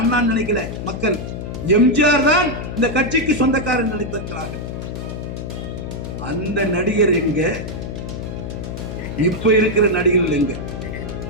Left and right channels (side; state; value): left; noise; hum, 7 dB below the sound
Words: நினைக்கல மக்கள். எம்ஜிஆர் தான் இந்த கட்சிக்கு சொந்தக்காரன் நினைத்திருக்கிறார்கள். அந்த நடிகர் எங்க? இப்ப இருக்கிற நடிகர்கள் எங்க?